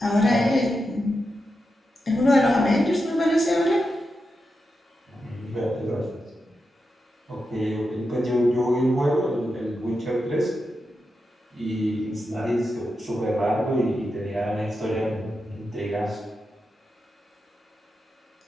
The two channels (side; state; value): both; normal; correlation 0.88